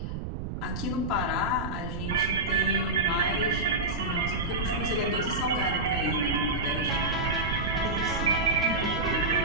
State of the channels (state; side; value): noise; right; rumble, 6 dB below the sound